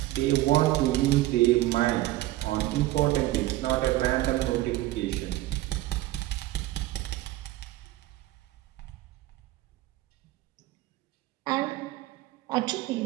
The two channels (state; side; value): quieter; left; 16.5 dB